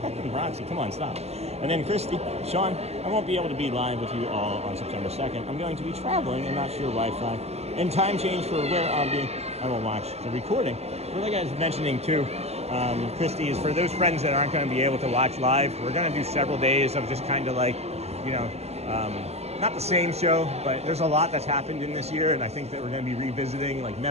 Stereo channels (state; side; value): late; left; 0.30 ms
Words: Roxy, come on, stop. And then Christy, Sean, I won't be able to be live with you all on September 2nd. I'm going to be traveling and not sure Wi-Fi. And time change for where I'll be, I will watch the recording. But like I was mentioning too, Christy, is for those friends that aren't going to be able to watch live, we're going to do several days of just kind of like, you know, not the same show, but there's a lot that's happened in this year, and I think that we're going to be revisiting like